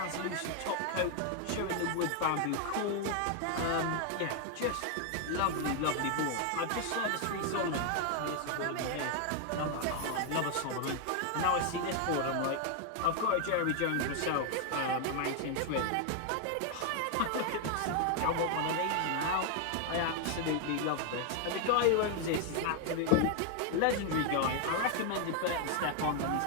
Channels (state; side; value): different; both; correlation 0.00